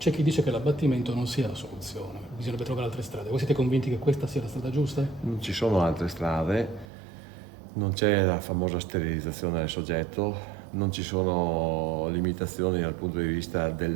chi dice che l'abbattimento non sia la soluzione, bisognerebbe trovare altre strade. Voi siete convinti che questa sia la strada giusta? Non ci sono altre strade, non c'è la famosa sterilizzazione del soggetto, non ci sono limitazioni dal punto di vista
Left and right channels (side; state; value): left; drops out; at 6.9 s